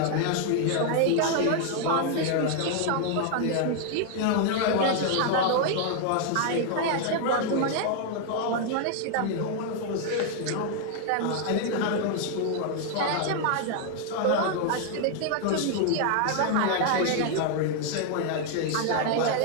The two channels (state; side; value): different; both; correlation 0.00